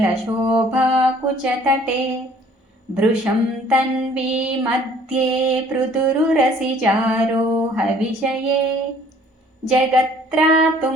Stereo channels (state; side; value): normal; both; correlation 0.56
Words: भृशं तन्वी मध्ये पृदुरुरसिजारोहविषये